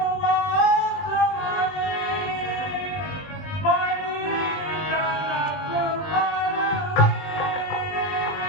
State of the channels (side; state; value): right; late; 20 ms